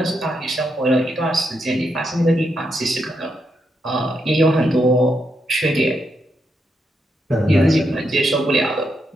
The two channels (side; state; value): both; normal; correlation 0.81